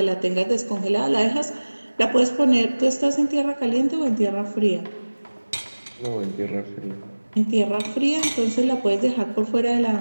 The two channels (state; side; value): inverted; both; correlation -1.00